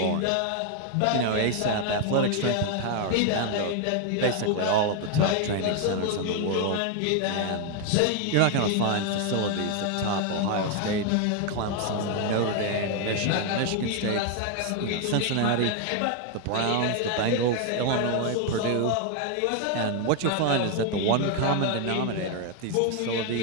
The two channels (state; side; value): different; both; correlation 0.01